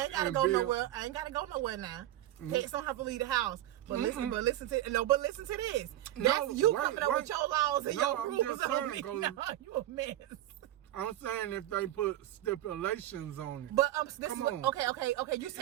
gotta go nowhere. I ain't gotta go nowhere now. Pets don't have to leave the house. But listen to this. That's you coming up with your laws and your rules on me. No, you a mess. I'm saying if they put stipulations on it. But okay. You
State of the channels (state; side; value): quieter; left; 14.0 dB